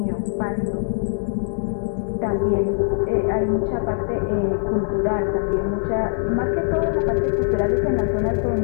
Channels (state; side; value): silent; right; digital silence